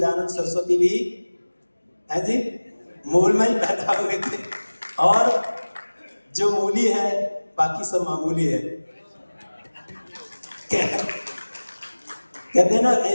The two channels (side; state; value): both; inverted; correlation -1.00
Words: सरस्वती भी है जी मूल में ही पैदा हुए थे, और जो मूली है बाकी सब मामूली है। कहते हैं ना,